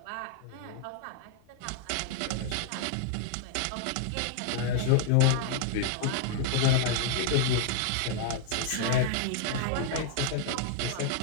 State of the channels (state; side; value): different; both; correlation 0.00